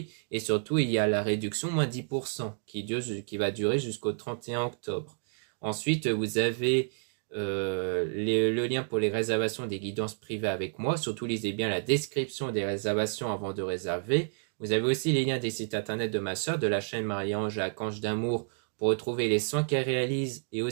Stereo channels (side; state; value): left; silent; digital silence